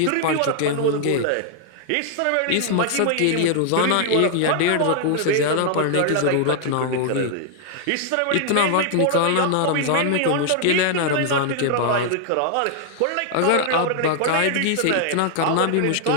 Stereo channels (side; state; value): both; different; correlation 0.00